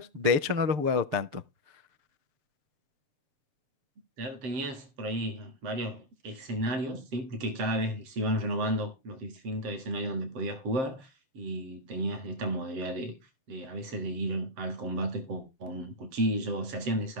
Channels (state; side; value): late; left; 7.7 ms